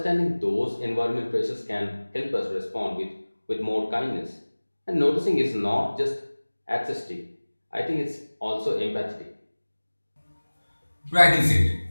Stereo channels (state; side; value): inverted; both; correlation -1.00